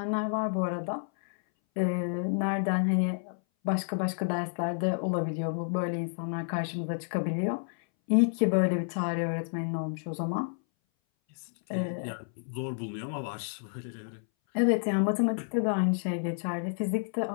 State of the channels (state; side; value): silent; right; 58 dB below the other